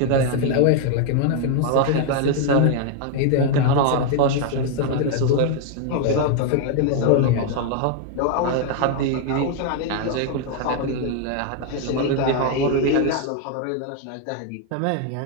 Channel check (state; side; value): different; both; correlation 0.00